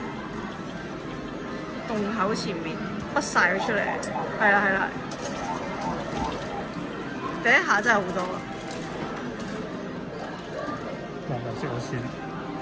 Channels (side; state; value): both; identical; correlation 1.00